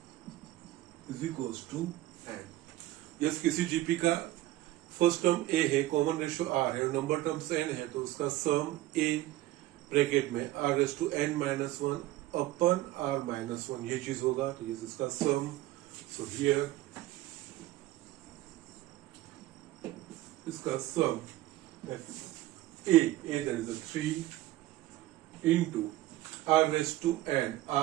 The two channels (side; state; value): left; quieter; 16.0 dB